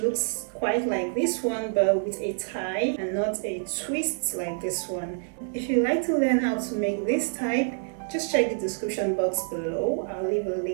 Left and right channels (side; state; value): left; silent; digital silence